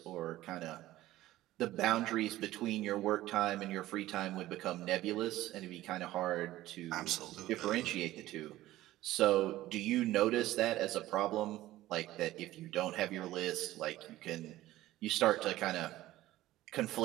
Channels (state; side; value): quieter; left; 15.7 dB